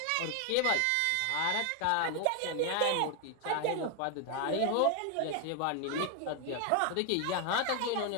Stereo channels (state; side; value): different; both; correlation 0.01